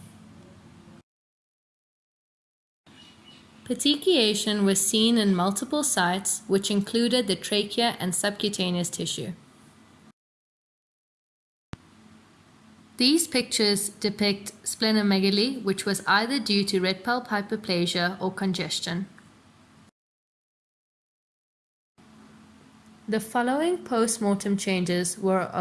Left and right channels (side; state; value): both; identical; correlation 1.00